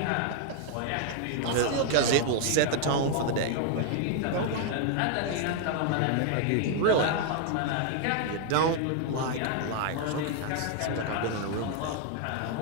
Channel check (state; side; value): different; both; correlation 0.00